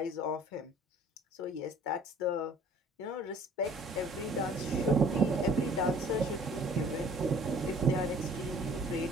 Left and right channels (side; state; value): both; normal; correlation 0.53